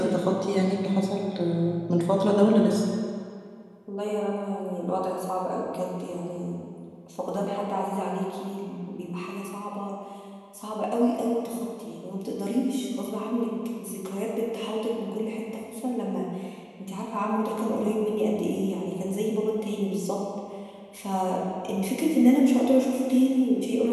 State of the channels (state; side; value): identical; both; correlation 1.00